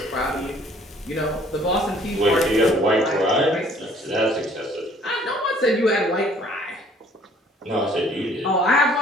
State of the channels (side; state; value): both; normal; correlation 0.58